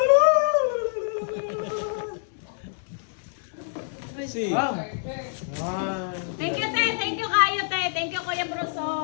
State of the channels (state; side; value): silent; right; digital silence